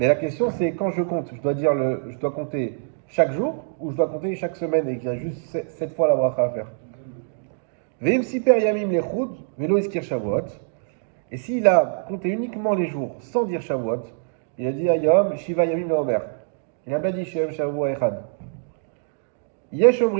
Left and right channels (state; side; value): silent; left; digital silence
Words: la question c'est quand je compte, je dois compter chaque jour ou je dois compter chaque semaine et qu'il y a juste 7 fois la bracha à faire. Veim siper yamim lechud, velo iskir Shavuot. Et s'il a compté uniquement les jours sans dire Shavuot, il a dit Ayom, Shiva Yamim Leomer. Il n'a pas dit Shem Shavuot Echad. Yesh